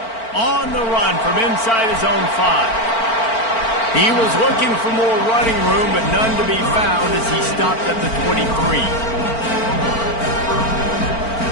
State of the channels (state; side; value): late; right; 4.4 ms